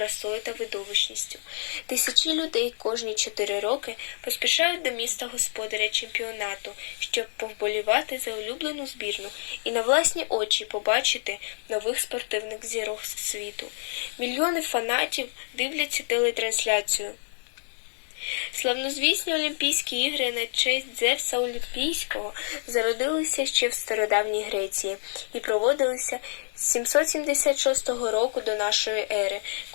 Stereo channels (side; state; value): right; silent; digital silence